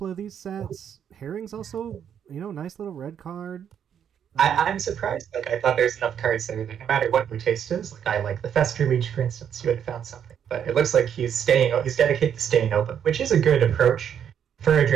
of these sets. Herring's also, nice little red card. I'm surprised. Like I thought there's enough cards there that no matter what your taste is, like I like the Fester Leech, for instance, you would have found something. But it looks like he's dedicated to staying open, which is a good approach for a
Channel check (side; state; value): left; quieter; 8.7 dB